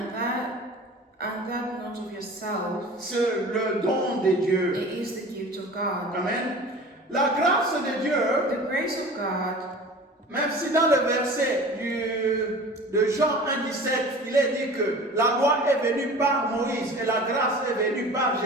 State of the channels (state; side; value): normal; both; correlation 0.40